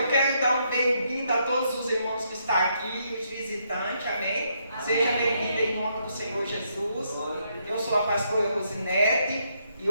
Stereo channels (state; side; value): inverted; both; correlation -0.76